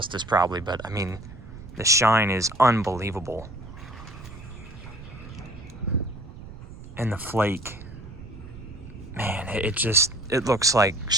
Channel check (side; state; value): right; noise; rumble, 15 dB below the sound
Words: probably, but I mean, the shine is unbelievable. And the flake, man, it looks like